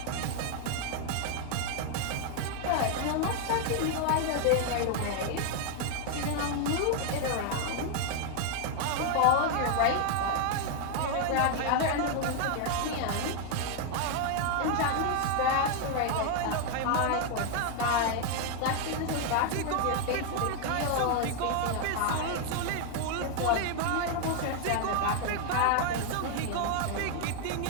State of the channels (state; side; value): different; both; correlation 0.00